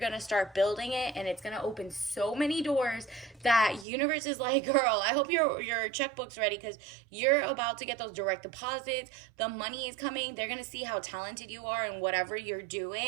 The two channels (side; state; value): left; drops out; at 3.9 s